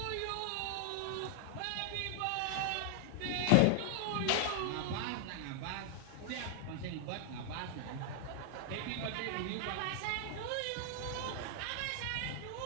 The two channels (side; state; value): both; different; correlation 0.00